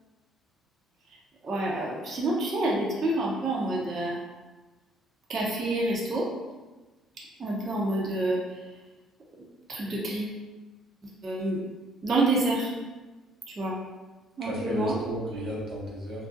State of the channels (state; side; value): normal; both; correlation 0.63